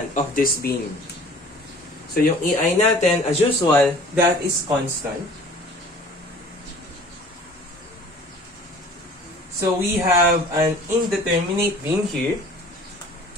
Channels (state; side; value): normal; both; correlation 0.48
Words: of this beam. So yung EI natin, as usual, that is constant. So we have an indeterminate beam here.